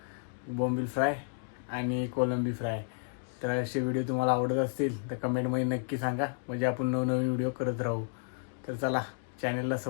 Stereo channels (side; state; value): right; silent; 57 dB below the other